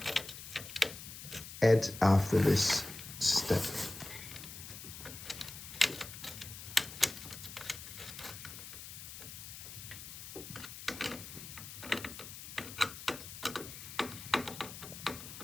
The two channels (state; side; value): noise; left; hiss, 11 dB below the sound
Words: add after this step.